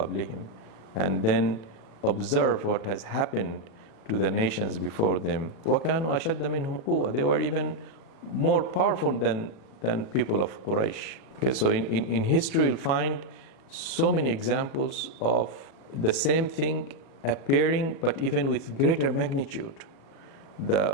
And then observe what has happened to the nations before them. وَكَانُوا أَشَدَّ مِنْهُمْ قُوَّةً. They were even more powerful than people of Quraysh. Okay, so in history you'll find so many examples of the same thing appearing, but even with greater magnitude.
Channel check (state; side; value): late; right; 37 ms